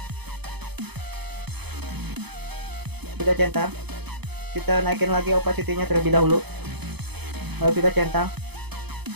Sudah centang, kita naikin lagi opacity-nya terlebih dahulu, lalu sudah centang.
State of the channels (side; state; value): left; late; 0.98 ms